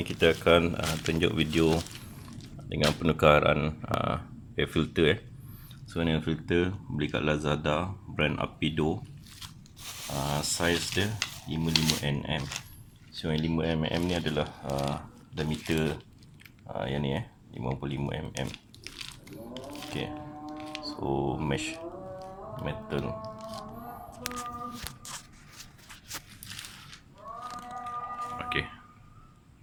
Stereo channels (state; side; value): identical; both; correlation 1.00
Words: kita akan tunjuk video dengan penukaran air filter. So ni air filter beli kat Lazada, brand Apido. Saiz dia 55mm. So yang 5mm ni adalah diameter yang ni 55mm. Okay, so mesh metal. Okay,